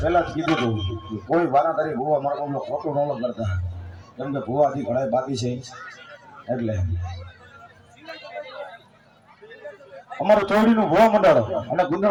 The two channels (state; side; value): identical; both; correlation 1.00